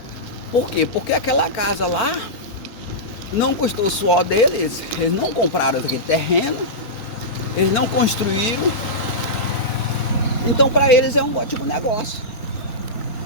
Por quê? Porque aquela casa lá não custou o suor deles, eles não compraram aquele terreno, eles não construíram. Então para eles é um ótimo negócio.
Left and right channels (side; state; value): right; late; 4.5 ms